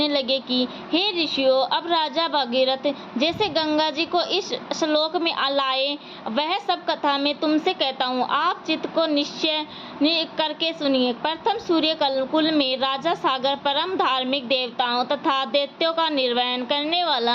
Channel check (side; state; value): both; identical; correlation 1.00